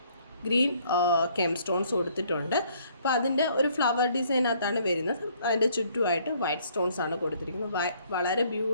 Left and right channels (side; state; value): both; inverted; correlation -0.64